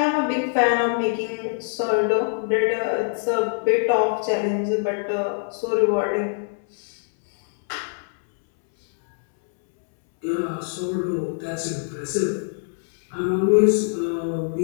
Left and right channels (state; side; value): silent; right; 63 dB below the other